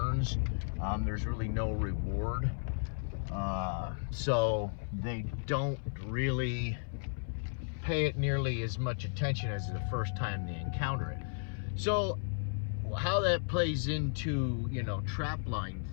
There's really no reward, so they don't really pay it nearly as much attention as the first time they encounter it. So how that plays into, trap line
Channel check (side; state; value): right; silent; 55 dB below the other